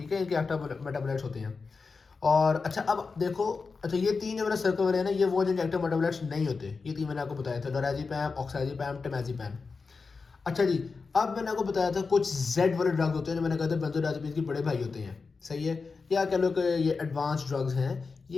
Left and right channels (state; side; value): quieter; right; 4.6 dB